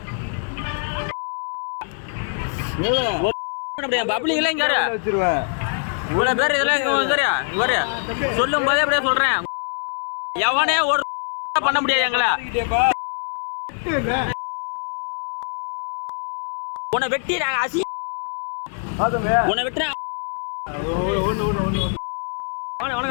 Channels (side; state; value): right; silent; 63 dB below the other